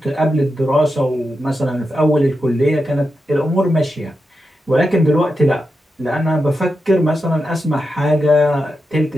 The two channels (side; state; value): both; normal; correlation 0.88